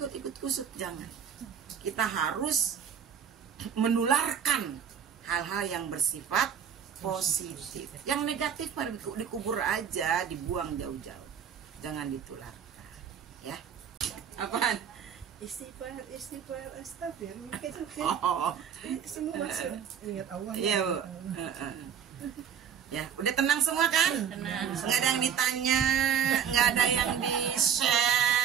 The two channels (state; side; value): quieter; left; 8.1 dB